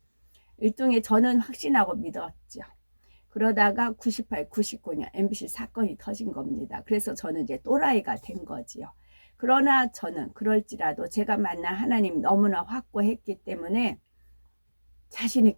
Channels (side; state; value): both; inverted; correlation -1.00